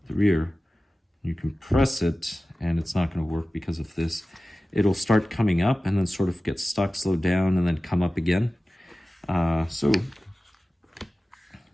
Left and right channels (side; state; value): both; normal; correlation 0.96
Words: the rear, you compress it, and it's not going to work because of this. It'll start coming up and then sort of get stuck, slow down, and then come up again. So